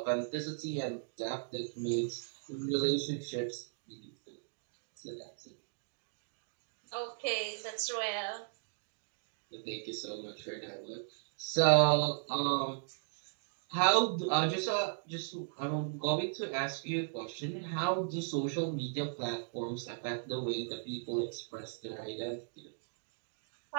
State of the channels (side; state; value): left; silent; digital silence